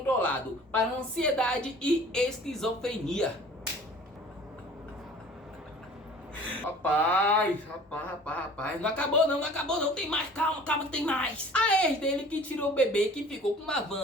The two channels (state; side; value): normal; both; correlation 0.47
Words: para ansiedade e esquizofrenia. Rapaz, não acabou não, tem mais, calma, tem mais. A ex dele, que tirou o bebê, que ficou com